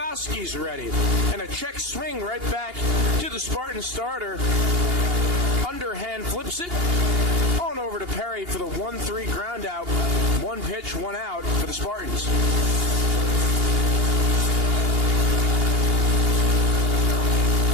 ready. And a check swing right back to the Spartan starter. Underhand flips it on over to Perry for the 1-3 ground out. 1 pitch, 1 out for the Spartans.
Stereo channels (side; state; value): left; late; 2.8 ms